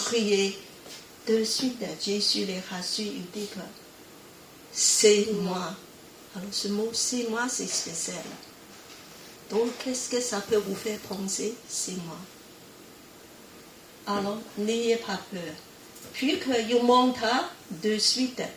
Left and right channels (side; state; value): both; identical; correlation 1.00